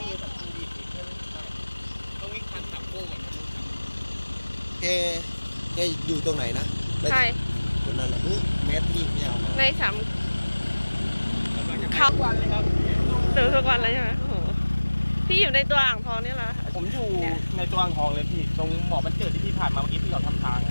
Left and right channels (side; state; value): both; inverted; correlation -1.00